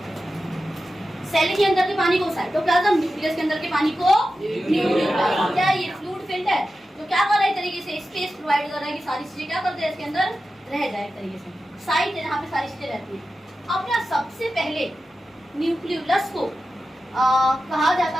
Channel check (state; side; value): normal; both; correlation 0.92